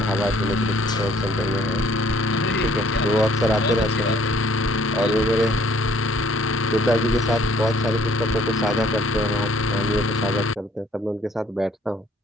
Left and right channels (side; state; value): both; normal; correlation 0.61